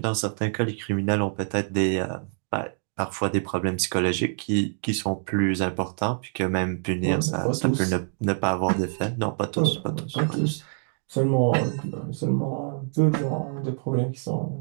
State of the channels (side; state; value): left; silent; 61 dB below the other